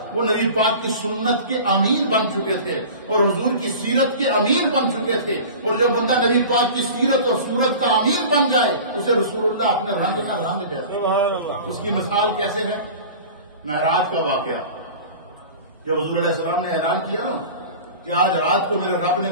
وہ نبی پاک کی سنت کے امیر بن چکے تھے اور حضور کی سیرت کے امیر بن چکے تھے. اور جو بندہ نبی پاک کی سیرت اور صورت کا امیر بن جائے اسے رسول اللہ اپنے رنگ کا رنگ دیتا. اس کی مثال کیسے ہے؟ معراج کا واقعہ. جب حضور علیہ السلام نے اعلان کیا نا کہ آج رات کو میرے رب نے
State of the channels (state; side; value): inverted; both; correlation -0.38